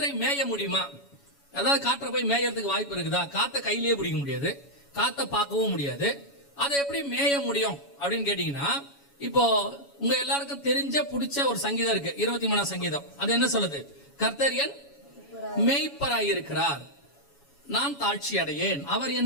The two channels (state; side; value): late; right; 7.1 ms